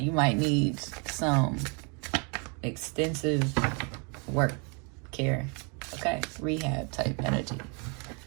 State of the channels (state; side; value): quieter; left; 34.9 dB